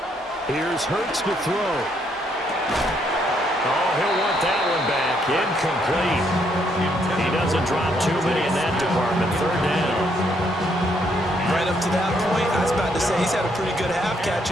Here's Hurts to throw. Oh, he'll want that one back. Incomplete. He doesn't drop too many in that department. 3rd down. Right up to that point, I was about to say he's had a pretty good half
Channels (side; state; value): both; normal; correlation 0.72